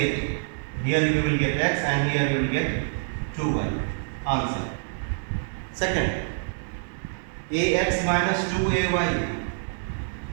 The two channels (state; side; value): silent; left; digital silence